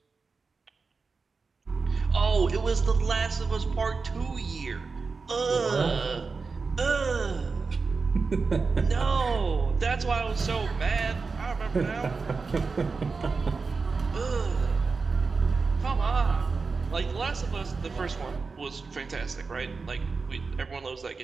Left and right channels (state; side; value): quieter; left; 4.5 dB